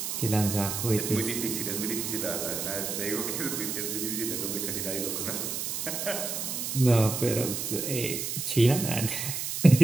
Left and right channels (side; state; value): right; noise; hiss, 3 dB below the sound